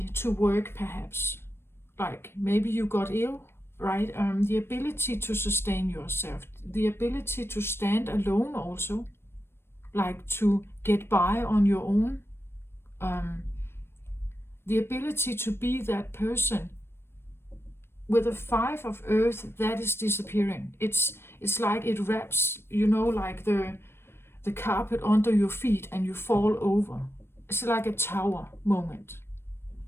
to work perhaps. Like maybe you got ill, right? The ability to sustain yourself, the ability to stand alone also, like to get by on your own. The ability to be that person. With a 5 of earth, that is disappearing. It's like it wraps, like the carpet under your feet and you fall over. It's like a tower moment,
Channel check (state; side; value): late; right; 0.12 ms